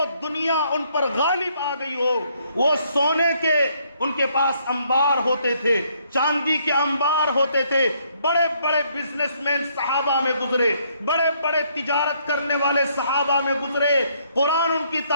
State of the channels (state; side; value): inverted; both; correlation -0.69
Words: دنیا ان پر غالب آ گئی ہو. وہ سونے کے ان کے پاس انبار ہوتے تھے, چاندی کے انبار ہوتے تھے, بڑے بڑے بزنس مین صحابہ میں گزرے, بڑے بڑے تجارت کرنے والے صحابہ میں گزرے. قرآن ان کی